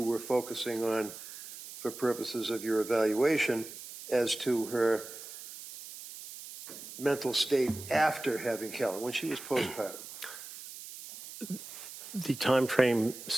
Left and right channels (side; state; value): right; noise; hiss, 13 dB below the sound